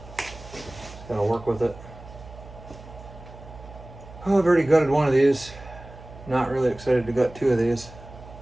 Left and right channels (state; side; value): noise; right; hum, 17 dB below the sound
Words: Just gotta work with it. Oh, I've already gutted one of these. Not really excited to gut 2 of these,